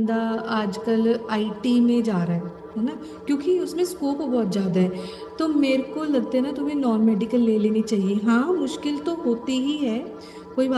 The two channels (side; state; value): both; identical; correlation 1.00